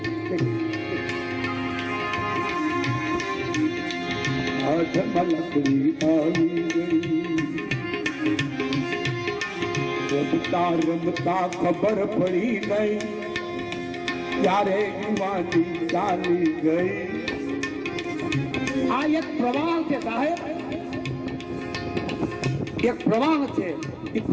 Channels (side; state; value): both; identical; correlation 1.00